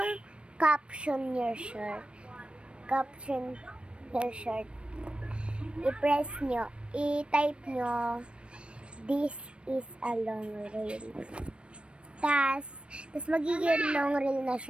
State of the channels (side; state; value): left; late; 0.058 ms